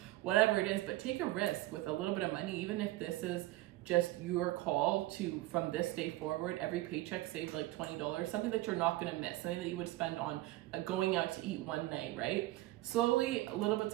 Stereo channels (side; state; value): left; quieter; 17.7 dB